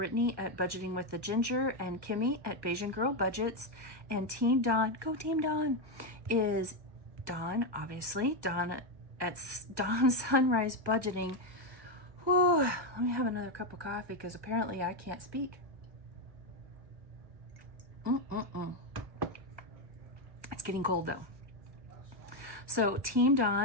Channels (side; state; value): left; late; 1.1 ms